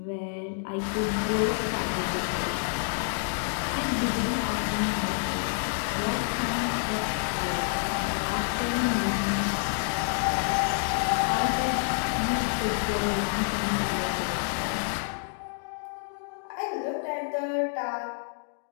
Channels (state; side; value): silent; right; digital silence